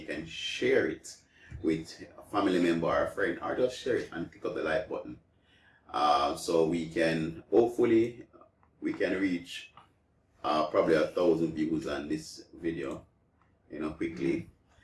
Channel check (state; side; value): identical; both; correlation 1.00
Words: can share it with a family member or a friend, or just share it and click up the like button. So we can hopefully reach probably 1,000 views on this video, quickly,